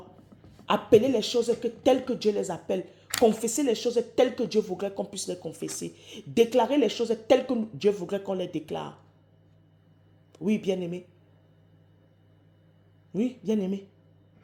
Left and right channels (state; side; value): identical; both; correlation 1.00